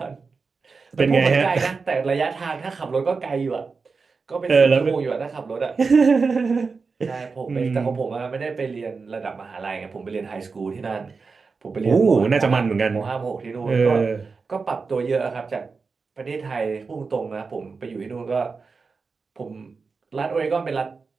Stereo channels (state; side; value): quieter; left; 4.7 dB